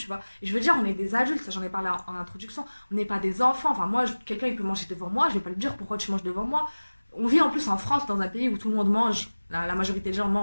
vois. Et je veux dire, on est des adultes, ça j'en ai parlé en introduction, on n'est pas des enfants. Enfin, moi, quelqu'un il peut manger devant moi, je vais pas lui dire pourquoi tu manges devant moi. On vit en plus en France, dans un pays où tout le monde mange, la majorité des gens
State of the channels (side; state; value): both; inverted; correlation -1.00